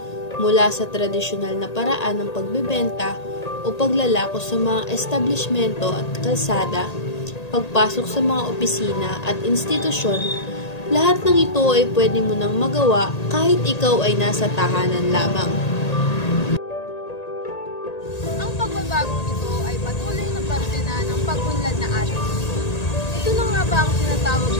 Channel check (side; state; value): right; late; 1.8 ms